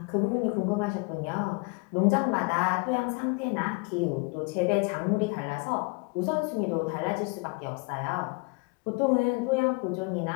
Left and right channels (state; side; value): quieter; right; 30.1 dB